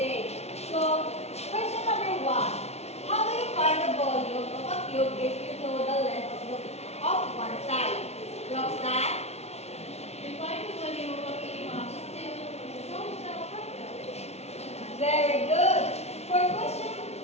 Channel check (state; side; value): late; right; 0.31 ms